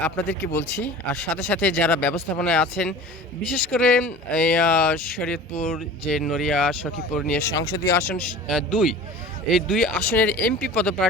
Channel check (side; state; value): both; normal; correlation 0.39